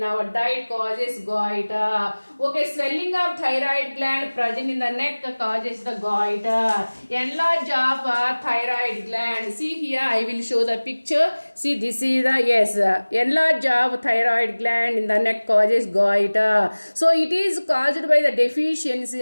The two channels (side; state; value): both; inverted; correlation -1.00